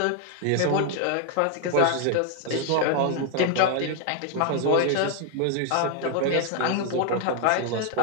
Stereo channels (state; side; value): different; both; correlation 0.00